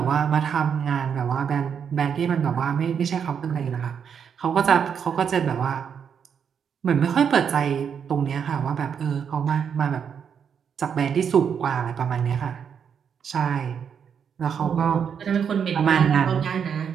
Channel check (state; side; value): quieter; left; 7.4 dB